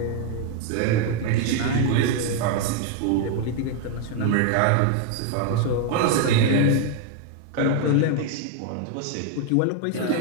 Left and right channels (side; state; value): both; different; correlation 0.00